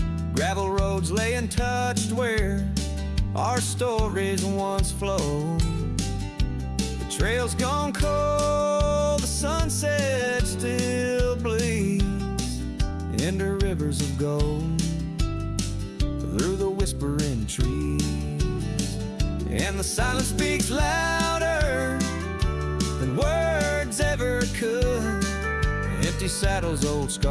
Gravel roads lay untouched where our stories once flowed. The trail's gone cold, the sunset still bleeds into rivers of gold through the whispering trees. And the silence speaks louder than words ever could. Empty saddles, old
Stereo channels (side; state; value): both; identical; correlation 1.00